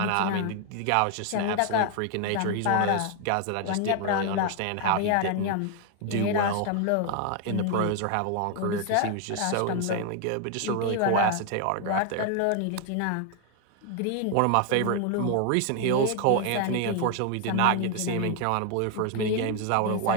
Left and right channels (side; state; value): both; different; correlation 0.00